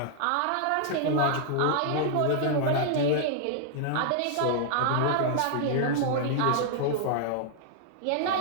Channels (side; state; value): both; different; correlation -0.01